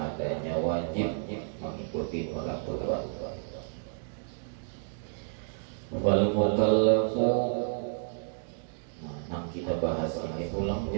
wajib mengikuti peraturan. Wal mukallafu, yang kita bahas ini ulang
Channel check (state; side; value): silent; left; digital silence